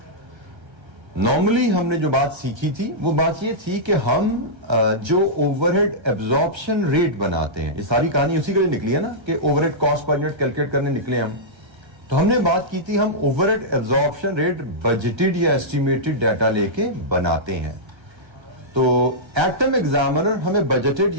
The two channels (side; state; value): left; late; 1.3 ms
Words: नॉर्मली हमने जो बात सीखी थी वो बात ये थी कि हम जो ओवरहेड एब्जॉर्प्शन रेट बनाते हैं, ये सारी कहानी उसी के लिए निकली है ना कि overhead cost per unit calculate करने निकले हम। तो हमने बात की थी हम ओवरहेड एब्जॉर्प्शन रेट बजटेड या एस्टिमेटेड डाटा लेके बनाते हैं। तो एक्टम एग्जामिनर हमें बजटेड